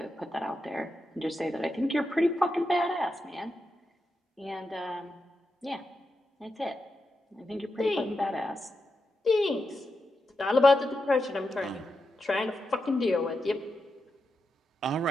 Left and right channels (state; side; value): normal; both; correlation 0.87